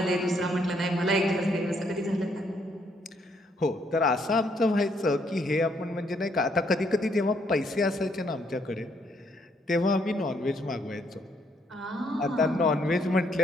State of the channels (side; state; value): both; normal; correlation 0.71